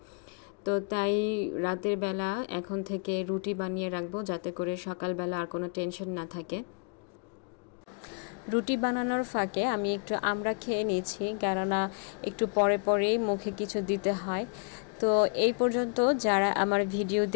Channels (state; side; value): quieter; right; 38.3 dB